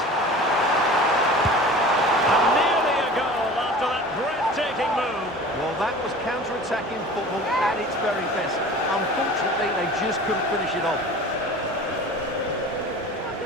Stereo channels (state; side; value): normal; both; correlation 0.40